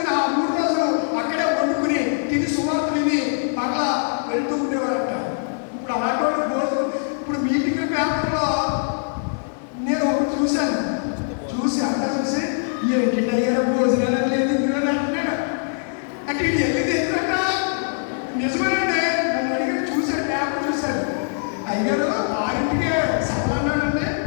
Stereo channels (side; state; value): right; silent; digital silence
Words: ఆ 3 రోజులు అక్కడే వండుకుని తిని సువార్త విని మరలా వెళ్తూ ఉండేవారట. ఇప్పుడు అలాంటి రోజులు ఇప్పుడు మీటింగ్ పేపర్లో నేను ఒకటి చూశాను. చూసి ఏంటి అయ్యారా భోజనాలు లేదు ఇందులోనే అంటున్నాడు. అంటే ఇది వెళ్ళింది ఎందుకంట నిజమేనండి. నన్ను అడిగారు, చూశాడు పేపర్ చూశాడు. అయ్యారు 6ంటికే సభలు అన్నాడండి.